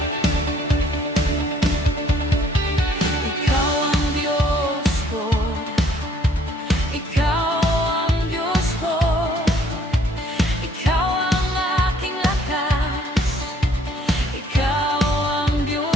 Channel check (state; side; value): normal; both; correlation 0.61